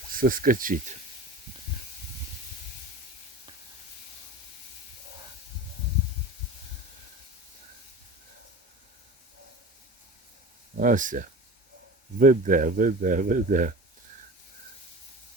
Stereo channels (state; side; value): normal; both; correlation 0.35